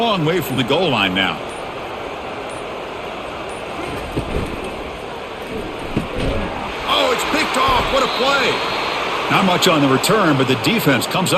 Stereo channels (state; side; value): identical; both; correlation 1.00